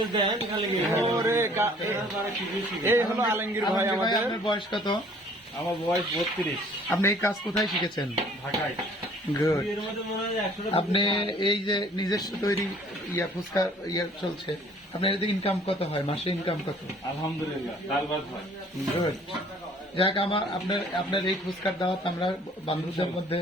ওরে এই হলো আলমগীর ভাই আলমগীর ভাই, আমাদের। আপনার বয়স কত? আমার বয়স 32। আপনি এই কাজ কোথায় শিখেছেন? ঢাকায়। গুড। আপনি এই যে নিজস্ব তৈরি ফুচকা চলছে, আপনার এতে ইনকাম কত হয়? মাসে ইনকাম কত? আলহামদুলিল্লাহ, ডাল ভাত হয়। গুড। যাক, আপনার এই ফুচকার দাওয়াত আমরা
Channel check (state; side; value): normal; both; correlation 0.55